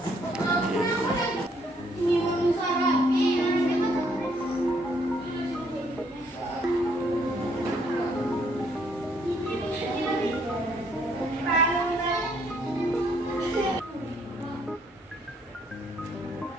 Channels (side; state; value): both; normal; correlation 0.68